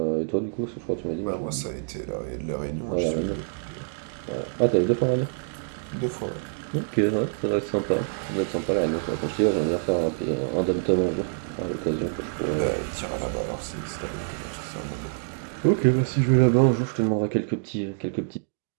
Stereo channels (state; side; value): silent; left; digital silence